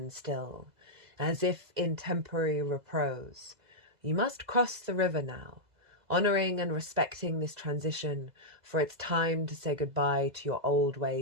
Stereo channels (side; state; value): left; late; 2.0 ms